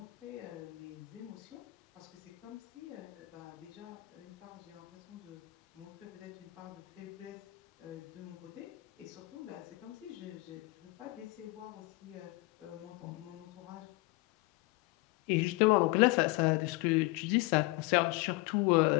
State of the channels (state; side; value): quieter; right; 22.5 dB